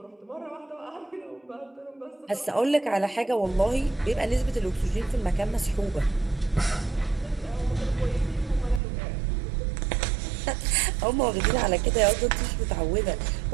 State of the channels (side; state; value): left; drops out; at 8.8 s